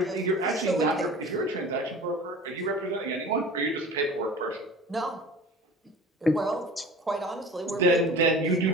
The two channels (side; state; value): both; normal; correlation 0.40